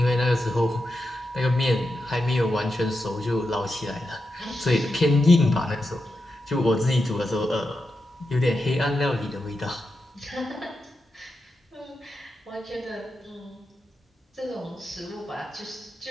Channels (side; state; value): both; normal; correlation 0.88